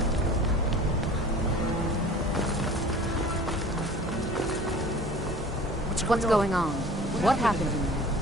What's going on? What happened in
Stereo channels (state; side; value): normal; both; correlation 0.43